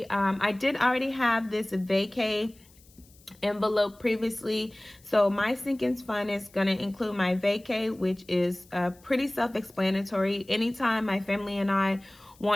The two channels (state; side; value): noise; left; hiss, 28 dB below the sound